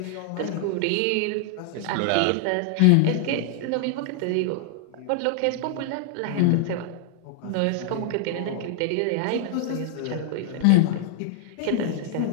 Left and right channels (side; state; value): both; different; correlation 0.00